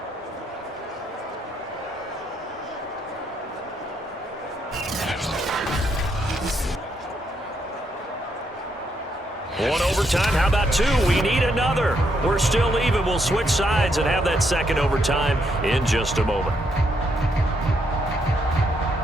One overtime. How about 2? We need another. We're still even. We'll switch sides and have that 2nd overtime in just a moment.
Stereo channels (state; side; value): normal; both; correlation 0.76